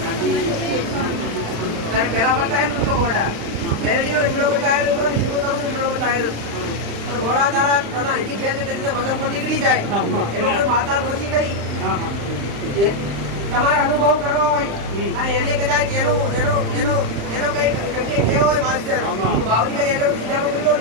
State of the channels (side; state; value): left; late; 35 ms